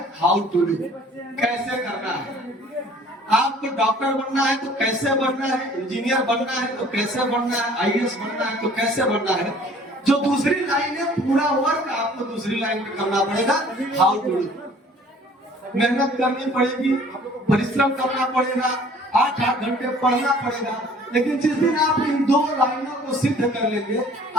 हाउ टू डू, कैसे करना है। आपको डॉक्टर बनना है तो कैसे बनना है, इंजीनियर बनना है तो कैसे बनना है, आईएएस बनना है तो कैसे बनना है। जो दूसरी लाइन है पूरा वर्क आपको दूसरी लाइन पे करना पड़ेगा, हाउ टू डू। मेहनत करनी पड़ेगी, परिश्रम करना पड़ेगा, 8-8 घंटे पढ़ना पड़ेगा, लेकिन जिस दिन आप इन दो लाइनों को सिद्ध कर लेंगे,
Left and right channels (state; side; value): normal; both; correlation 0.53